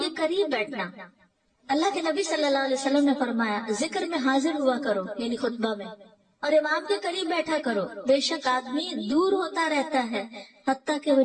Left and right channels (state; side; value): identical; both; correlation 1.00